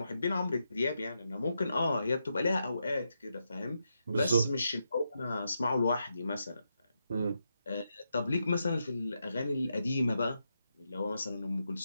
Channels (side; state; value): both; inverted; correlation -0.84